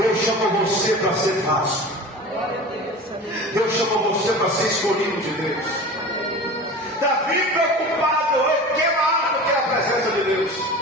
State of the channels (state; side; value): normal; both; correlation 0.35